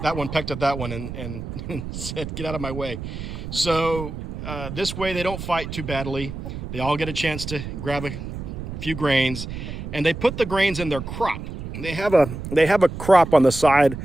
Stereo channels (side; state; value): right; noise; rumble, 8 dB below the sound